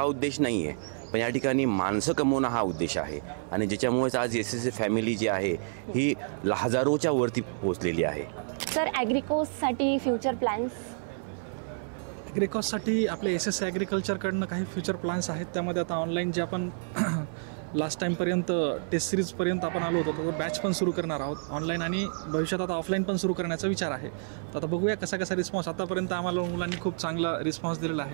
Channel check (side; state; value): left; silent; 59 dB below the other